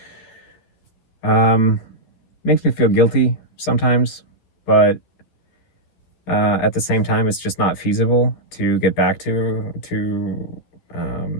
makes me feel guilty sometimes, but at the same time, it's just not feasible to get back to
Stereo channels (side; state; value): right; late; 12 ms